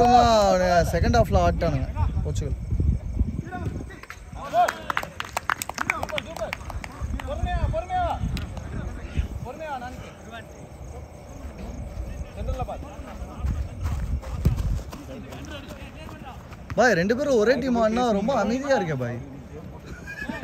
செகண்ட் ஹாஃப்ல ஆட்டானுங்க போர்ச்சுகல். பாய் ரெண்டு பேரும் ஒரே டீம் ஆடினா ரொம்ப அமைதியா இருக்கே பாய்.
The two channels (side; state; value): both; identical; correlation 1.00